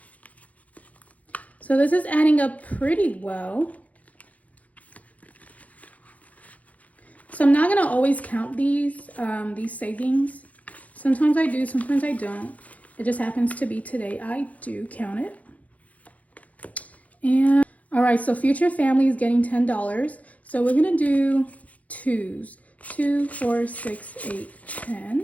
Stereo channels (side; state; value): right; late; 0.070 ms